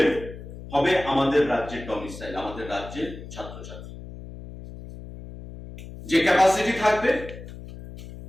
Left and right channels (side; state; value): left; noise; hum, 13 dB below the sound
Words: হবে আমাদের রাজ্যের ডমিসাইল, আমাদের রাজ্যের ছাত্রছাত্রী। যে ক্যাপাসিটি থাকবে